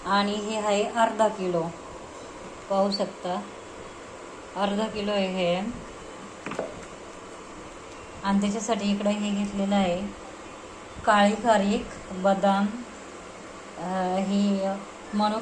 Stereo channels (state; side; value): identical; both; correlation 1.00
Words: आणि हे आहे अर्धा किलो, पाहू शकता अर्धा किलो आहे हे। आणि त्याच्यासाठी इकडे हे घेतलेलं आहे काळी खारीक, बदाम, ही